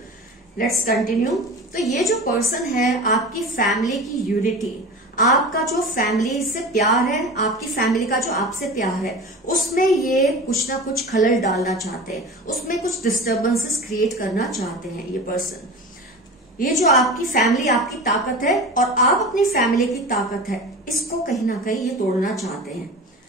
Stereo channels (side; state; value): both; normal; correlation 0.33